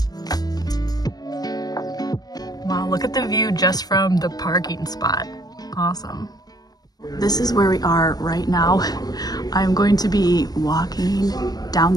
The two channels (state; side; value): late; right; 0.19 ms